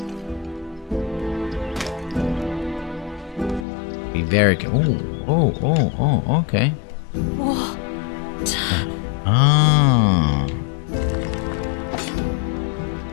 Be very careful. Oh, okay. What? Ah.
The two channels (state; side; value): drops out; right; at 3.7 s